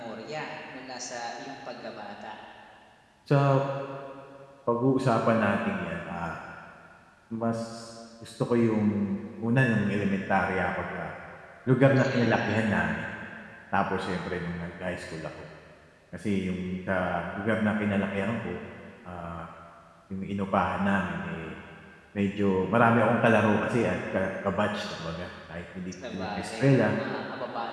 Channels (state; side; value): identical; both; correlation 1.00